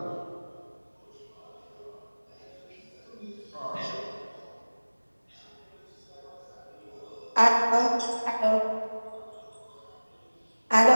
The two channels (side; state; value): both; inverted; correlation -1.00